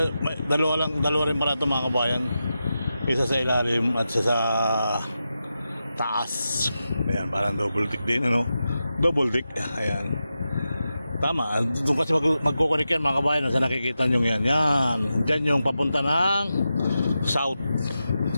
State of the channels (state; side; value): inverted; both; correlation -0.90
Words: dalawa rin pala ito mga kabayan. Isa sa ilalim at isa sa taas. Ayan, parang double tick din, ano? Double tick. Ayan. Tama, doon kasi magkukunik yan mga kabayan. Sa nakikita nyo yan. Yan, dyan yung papunta ng south.